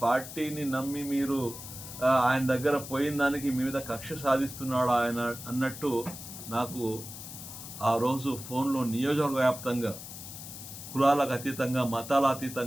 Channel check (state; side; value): noise; left; hiss, 12 dB below the sound